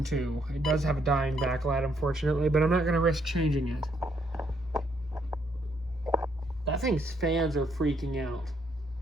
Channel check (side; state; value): both; normal; correlation 0.72